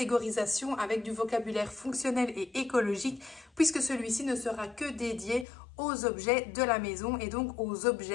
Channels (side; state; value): right; drops out; at 5.5 s